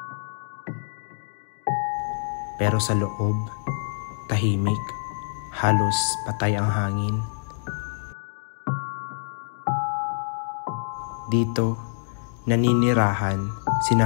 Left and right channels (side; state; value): right; silent; digital silence